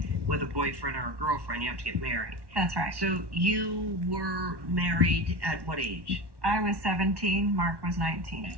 with a boyfriend or a girlfriend. You have to get married. That's right. So you were married at what age? I was 17, Mark was 19.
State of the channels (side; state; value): left; late; 1.1 ms